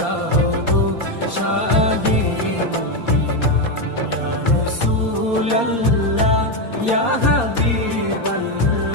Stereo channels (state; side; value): late; right; 4.2 ms